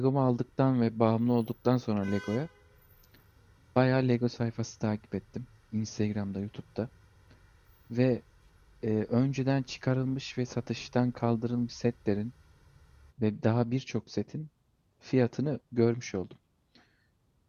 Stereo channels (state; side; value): identical; both; correlation 1.00